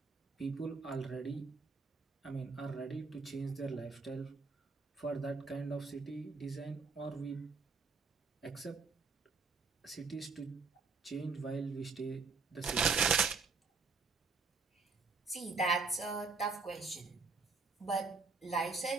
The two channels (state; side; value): quieter; left; 4.5 dB